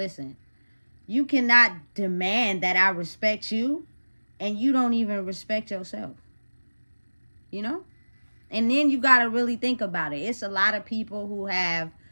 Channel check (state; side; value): inverted; both; correlation -1.00